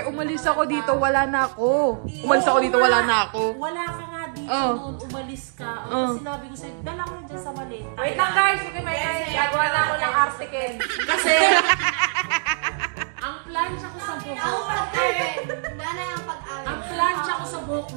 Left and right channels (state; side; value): silent; left; digital silence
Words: umalis ako dito, wala na ako. Umalis ako dito, wala na ako. Wala ka nga dito Oh. noon, umalis ka. Oh. Sinabi ko sa'yo, dala ko dyan sa maleta. Wait lang guys, okay may gagawa na ako ng article. Kasi, ang plancha ko sa Ako buhok, pag-amin. Nanay ang pag-amin. ang plancha ko sa buhok,